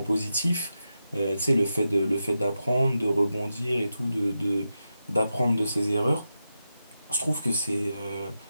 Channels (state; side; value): inverted; both; correlation -0.89